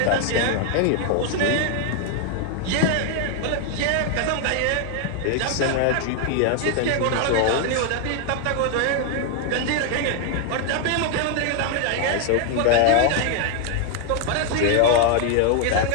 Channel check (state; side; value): different; both; correlation 0.00